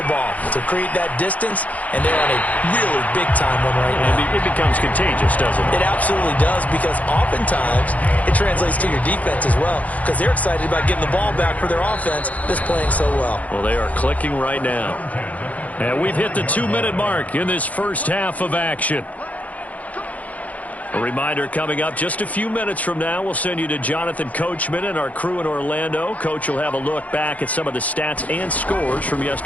to create that distance, and they're on a really big-time one right now. It becomes contagious, doesn't it? It absolutely does, because oftentimes it translates to your defense as well, because they're excited about getting the ball back for their offense that's playing so well. Well, they are clicking right now. And we've hit the 2-minute mark in this first half of action. A reminder coming up just a few minutes from now, we'll send you to Jonathan Coachman and our crew in Orlando. Coach will have a look back at some of the stats and scores from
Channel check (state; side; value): late; right; 0.071 ms